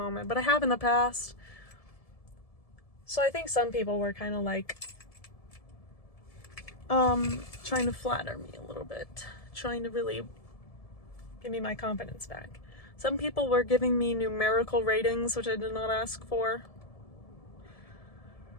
but I have in the past. So I think some people were kind of like trying to flatter me a little bit, trying to really give me my confidence back. Some people were giving me numerical ratings, which I did not ask for.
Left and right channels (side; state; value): right; late; 1.7 ms